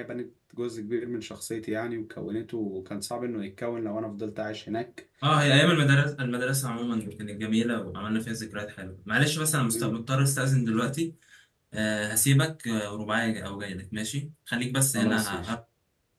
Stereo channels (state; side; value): identical; both; correlation 1.00